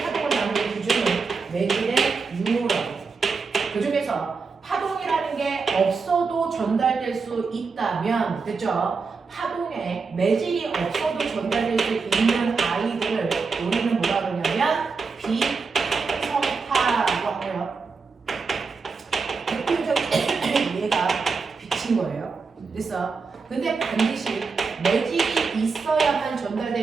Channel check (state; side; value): quieter; left; 4.8 dB